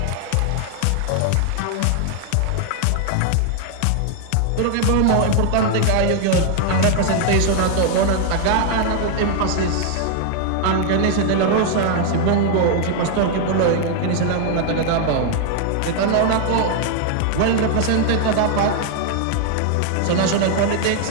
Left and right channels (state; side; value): different; both; correlation 0.00